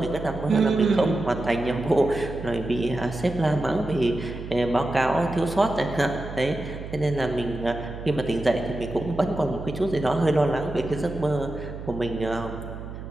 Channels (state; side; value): noise; right; hum, 10 dB below the sound